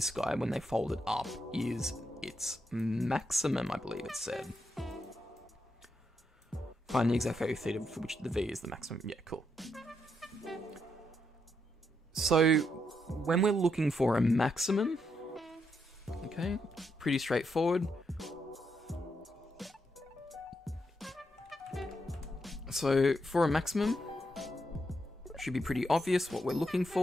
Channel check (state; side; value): normal; both; correlation 0.80